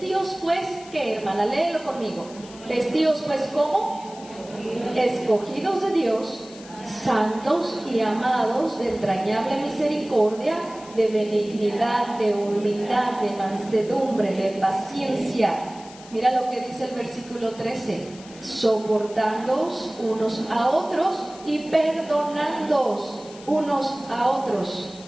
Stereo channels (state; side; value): noise; left; hiss, 20 dB below the sound